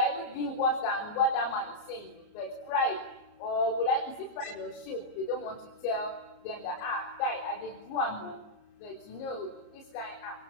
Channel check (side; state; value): right; late; 34 ms